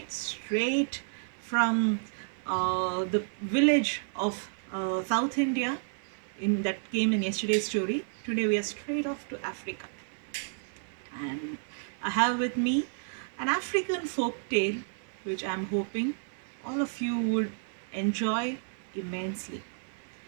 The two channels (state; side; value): silent; left; digital silence